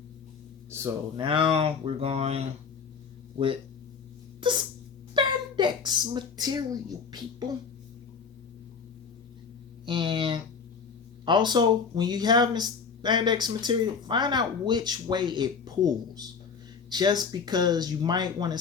So now we're going with the spandex material, people. And also, when you have this spandex material, find out which way it pulls. Just because you might want to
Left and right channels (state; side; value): quieter; right; 5.8 dB